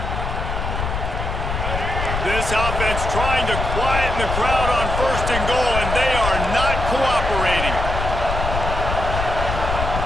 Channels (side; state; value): left; noise; rumble, 3 dB below the sound